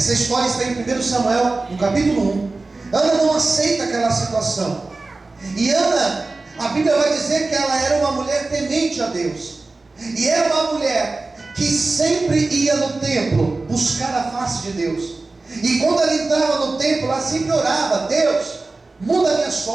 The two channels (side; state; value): left; quieter; 3.4 dB